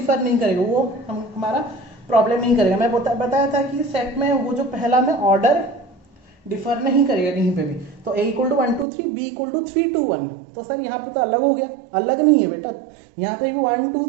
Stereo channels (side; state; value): left; drops out; at 8.8 s